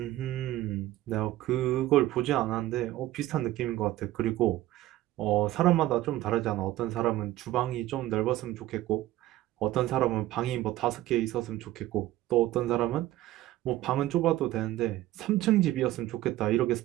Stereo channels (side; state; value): left; quieter; 15.4 dB